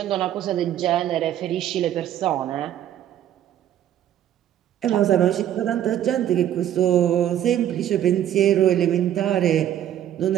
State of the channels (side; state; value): left; quieter; 11.2 dB